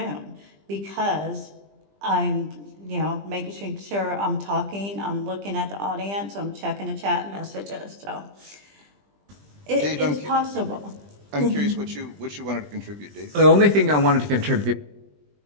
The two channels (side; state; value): left; late; 20 ms